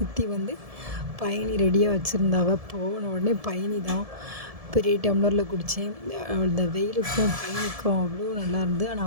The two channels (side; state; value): left; late; 1.7 ms